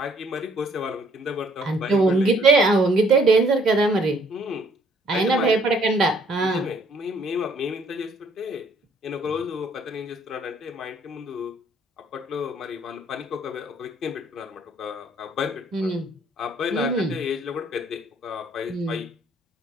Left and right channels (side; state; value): both; normal; correlation 0.63